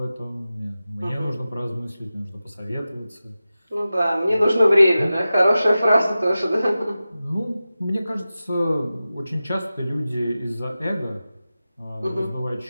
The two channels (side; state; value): both; inverted; correlation -0.94